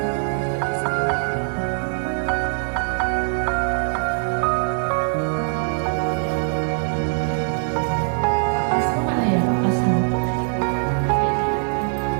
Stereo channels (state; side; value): silent; left; 64 dB below the other